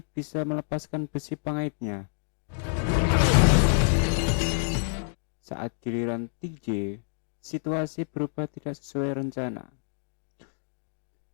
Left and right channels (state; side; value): silent; right; 59 dB below the other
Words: bisa melepaskan besi pengaitnya. Saat giliran TJ, situasi berubah tidak sesuai rencana.